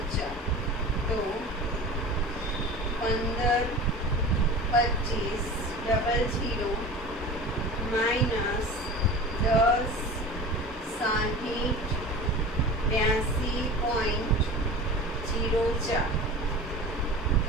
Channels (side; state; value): both; normal; correlation 0.35